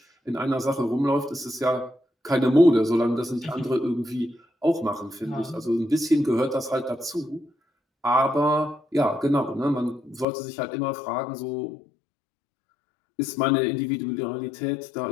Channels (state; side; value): drops out; right; at 10.2 s